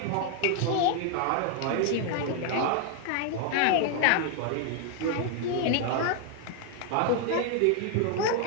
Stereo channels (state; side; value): different; both; correlation 0.00